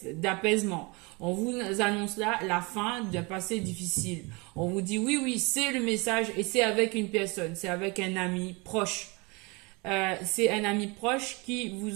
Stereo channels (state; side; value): quieter; left; 27.5 dB